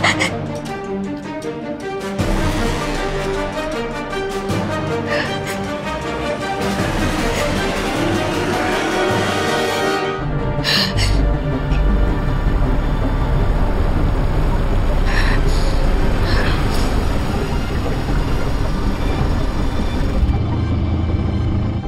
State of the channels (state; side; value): identical; both; correlation 1.00